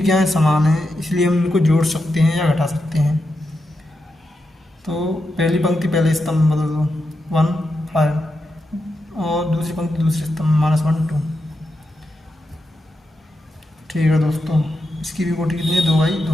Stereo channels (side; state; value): both; normal; correlation 0.87